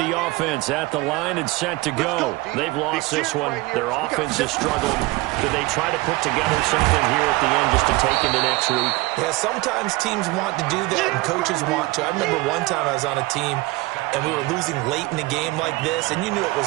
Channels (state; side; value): quieter; left; 21.9 dB